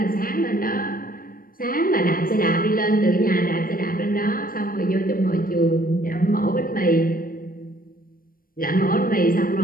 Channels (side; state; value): right; late; 0.41 ms